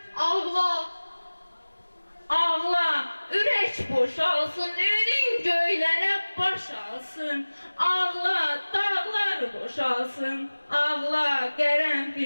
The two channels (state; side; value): inverted; both; correlation -1.00